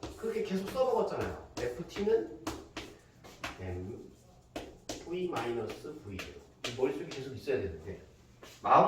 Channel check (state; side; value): identical; both; correlation 1.00